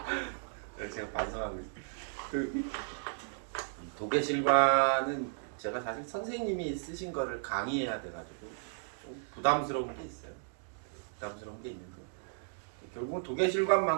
그래서 제가 반성하고 있어요. 도계실관은 제가 사실 선생님이 쓰신 거를 강의해야 돼가지고 좀 부담스러운 게 있어요. 부담스러운 게 있는데 결국은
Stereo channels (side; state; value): left; silent; digital silence